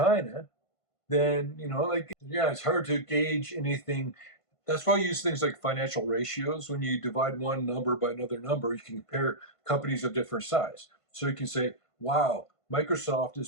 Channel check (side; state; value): right; late; 1.5 ms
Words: than, like, yeah, it's hard to gauge anything. That's why I use things like financial ratios. When you divide one number by another number, you can compare companies of different size. So you can say, wow, Microsoft